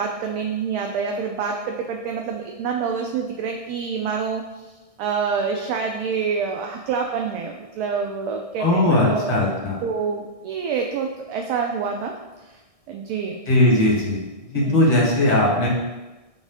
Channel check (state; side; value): late; left; 1.6 ms